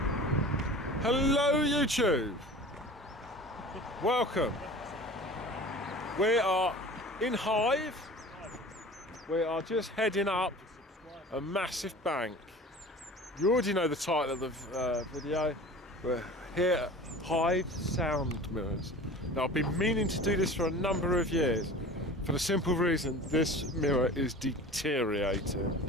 Hello YouTube! Welcome. We are in Hythe. We are just heading up a massive bank. You already know the title of the video. We're here at Hythe Sound Mirrors. Now I've been meaning to do this for a number of years for the simple reason this mirror is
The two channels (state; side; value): normal; both; correlation 0.39